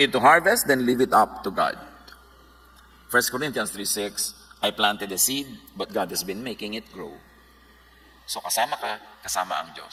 to harvest, then leave it up to God. 1 Corinthians 3:6, I planted a seed, but God has been making it grow. So kasama ka, kasama ang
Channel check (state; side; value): identical; both; correlation 1.00